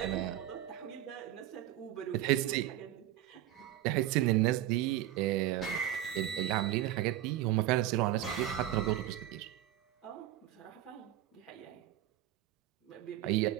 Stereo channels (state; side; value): quieter; left; 13.2 dB